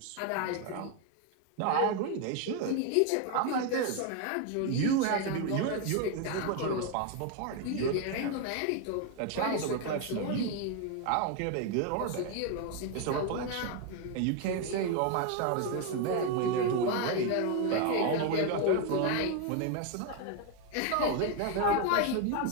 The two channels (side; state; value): both; different; correlation 0.01